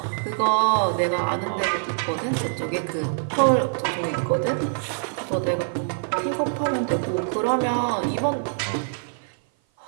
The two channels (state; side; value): silent; left; 56 dB below the other